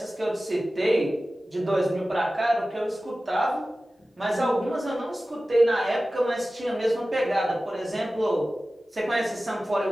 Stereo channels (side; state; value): both; normal; correlation 0.96